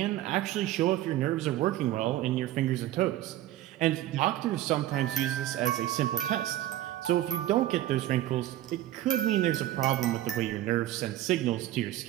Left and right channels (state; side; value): quieter; left; 13.9 dB